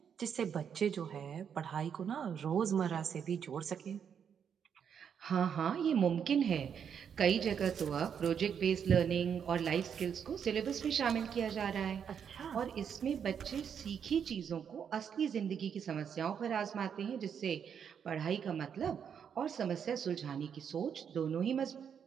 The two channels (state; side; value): quieter; left; 7.7 dB